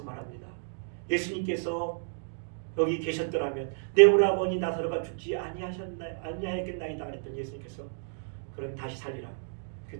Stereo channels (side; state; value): left; silent; digital silence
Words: 말합니다. 예수님께서 여기 계셨더라면 내 오라버니 나사로가 죽지 아니하였겠나이다 그랬더니 예수님께서 그럼 다시 살리라.